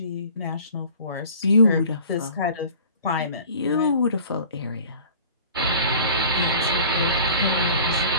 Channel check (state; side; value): inverted; both; correlation -0.46